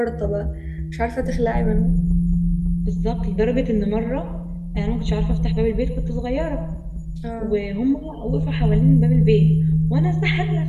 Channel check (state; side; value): identical; both; correlation 1.00